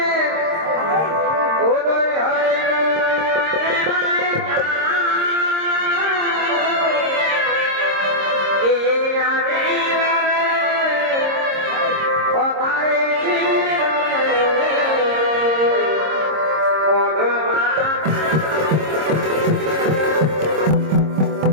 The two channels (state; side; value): late; left; 26 ms